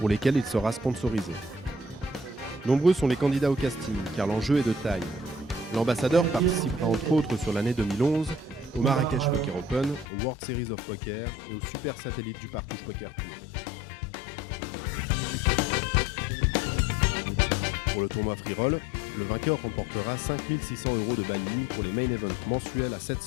lesquels il sera sponsorisé. Nombreux sont les candidats au casting car l'enjeu est de taille. L'ambassadeur participera entre autres sur l'année 2011 au Marrakech Poker Open, au World Series of Poker et au Super Satellite du Partouche Poker Tour. Pour le tournoi free roll, le vainqueur remportera 5 600 € de buy-in pour les main events mensuels à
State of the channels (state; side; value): drops out; right; at 10.1 s